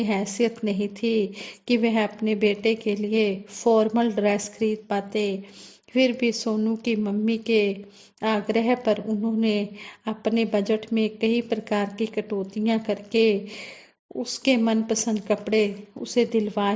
हैसियत नहीं थी कि वह अपने बेटे के लिए फॉर्मल ड्रेस खरीद पाते। फिर भी सोनू की मम्मी के आग्रह पर उन्होंने अपने बजट में कई प्रकार की कटौतियां करके उसके मनपसंद कपड़े उसे दिलवा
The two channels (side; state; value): both; identical; correlation 1.00